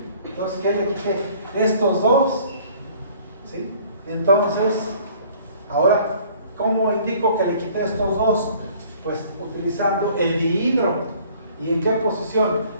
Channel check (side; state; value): both; inverted; correlation -0.54